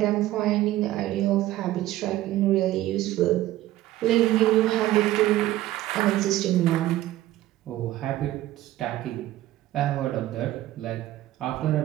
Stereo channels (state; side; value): quieter; left; 15.0 dB